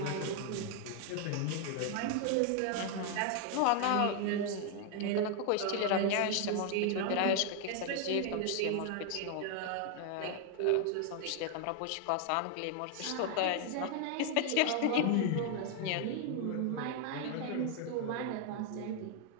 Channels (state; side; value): different; both; correlation 0.00